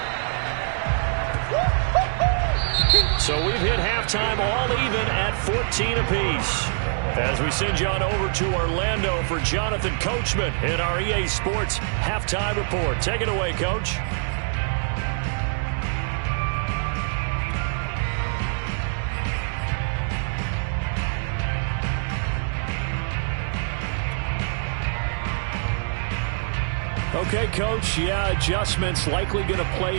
So we've hit halftime all even at 14 apiece. As we send you on over to Orlando for Jonathan Coachman in our EA Sports Halftime Report. Take it away, Coach. Okay, Coach, yeah, adjustments likely going to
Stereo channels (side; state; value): left; silent; digital silence